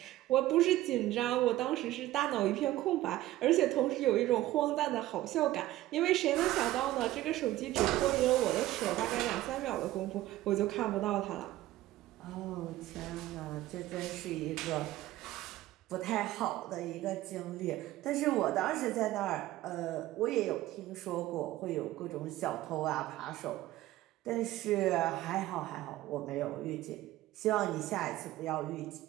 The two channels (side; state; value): left; quieter; 15.6 dB